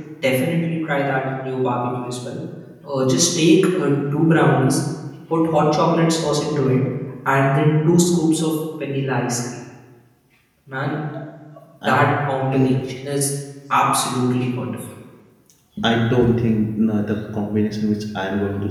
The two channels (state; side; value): identical; both; correlation 1.00